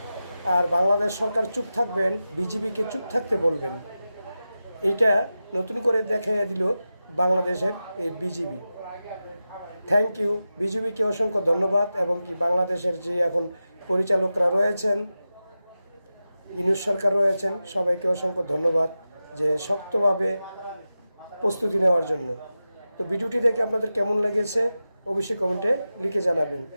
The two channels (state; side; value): inverted; both; correlation -0.93